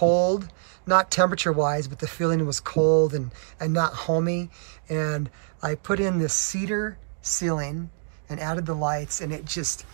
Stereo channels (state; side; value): silent; left; digital silence